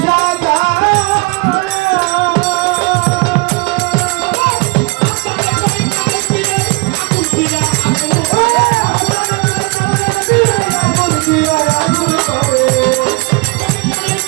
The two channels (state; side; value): quieter; left; 28.2 dB